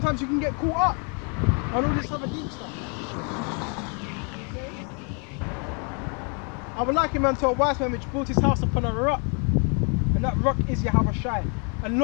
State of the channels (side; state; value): right; quieter; 37.5 dB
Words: you can get caught up on all this other deep stuff. Okay? I would like him unto a wise man which built his house upon a rock. And that rock is Yahawashi. And